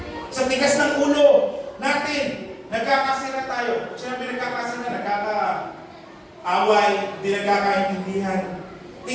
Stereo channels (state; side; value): identical; both; correlation 1.00